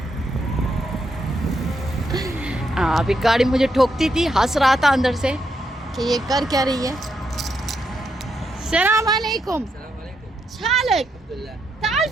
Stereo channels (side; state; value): both; normal; correlation 0.80